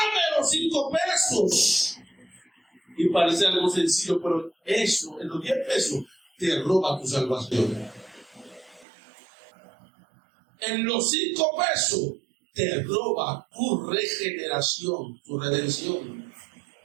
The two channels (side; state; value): left; drops out; at 8.8 s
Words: los 5 pesos. Y parece algo sencillo, pero eso, en los 10 pesos, te roba tu salvación. En los 5 pesos, te roba tu regeneración, tu redención.